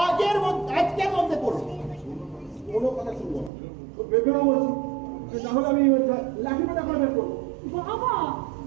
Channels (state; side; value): drops out; left; at 3.5 s